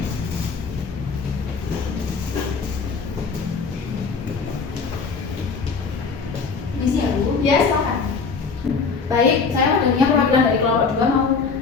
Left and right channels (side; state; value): right; quieter; 5.0 dB